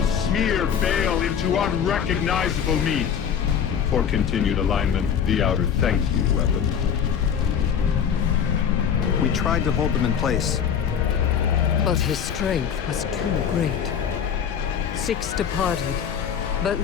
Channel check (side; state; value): right; quieter; 8.0 dB